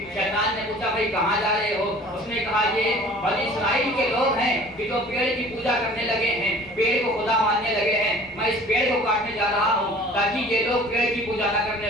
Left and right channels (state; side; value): noise; right; rumble, 25 dB below the sound